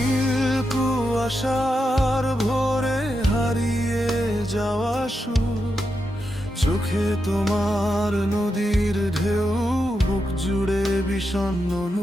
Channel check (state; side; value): normal; both; correlation 0.86